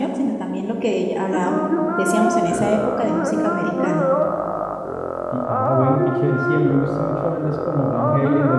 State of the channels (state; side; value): identical; both; correlation 1.00